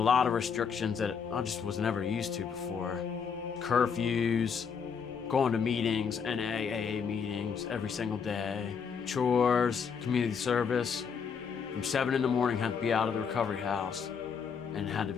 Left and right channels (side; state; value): right; quieter; 6.4 dB